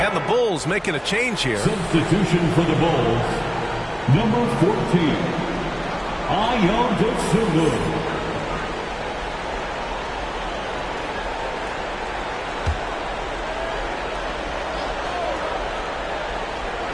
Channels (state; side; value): identical; both; correlation 1.00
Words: And the Bulls making a change here. Substitution for the Bulls. Number 14. Ayo Dosunmu.